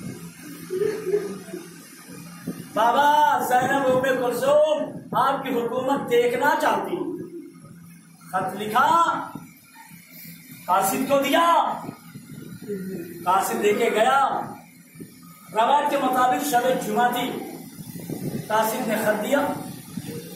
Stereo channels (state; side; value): identical; both; correlation 1.00